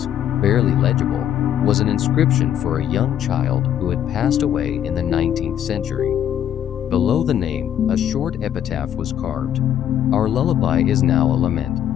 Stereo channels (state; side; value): quieter; right; 10.3 dB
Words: barely legible, was an inscription for a young child who had passed away in the 19th century. Below the name, a short epitaph was carved. Our lullaby is now a lament.